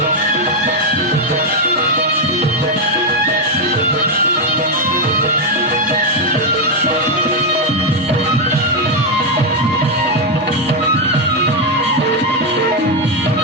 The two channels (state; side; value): normal; both; correlation 0.03